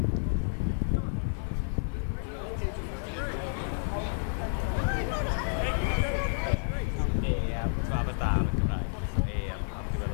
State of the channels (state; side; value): silent; right; digital silence